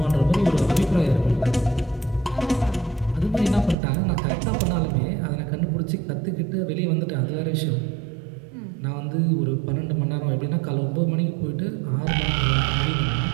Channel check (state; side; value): drops out; left; at 3.8 s